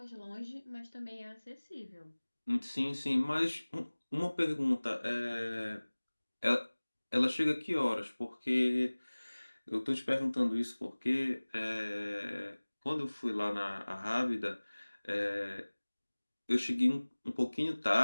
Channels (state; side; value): inverted; both; correlation -1.00